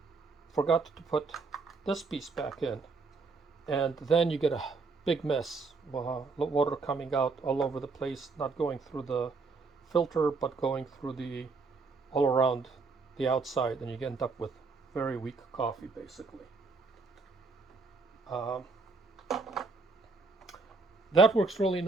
forgot to put this piece back in. And then you get a big mess, water coming out all over the place, not going through the filter, but going through all around the outside, and you end up with very weak coffee, basically. That works really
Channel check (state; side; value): quieter; left; 4.1 dB